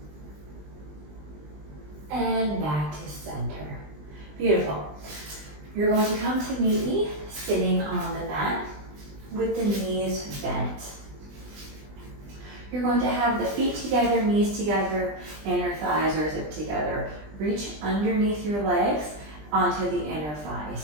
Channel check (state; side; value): late; left; 20 ms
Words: And back to center. Beautiful. You're going to come to meet me sitting on the mat with the knees bent. You're going to have the feet together, knees together, inner thighs are zipped together. Reach underneath your legs onto the inner